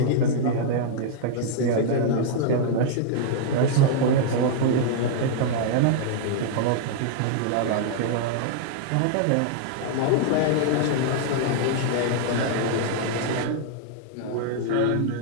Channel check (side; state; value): both; different; correlation -0.01